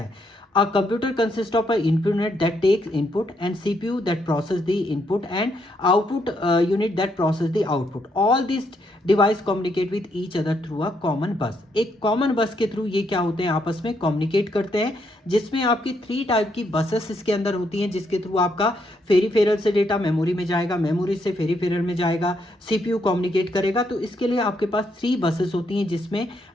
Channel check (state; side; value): normal; both; correlation 0.76